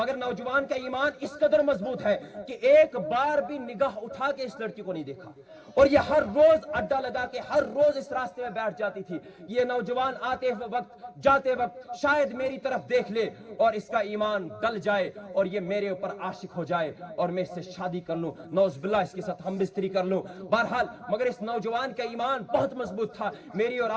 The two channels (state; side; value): identical; both; correlation 1.00